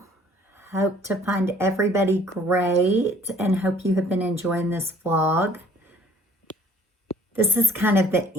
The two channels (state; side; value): normal; both; correlation 0.56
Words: Hope to find everybody great and hope you have been enjoying this vlog. This is kind of the